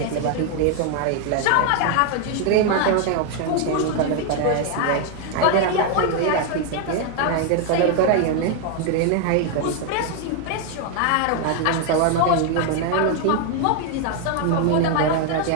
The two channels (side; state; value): both; different; correlation 0.01